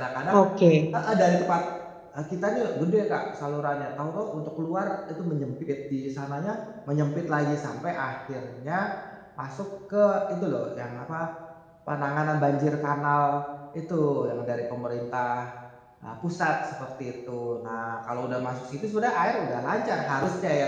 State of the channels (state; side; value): identical; both; correlation 1.00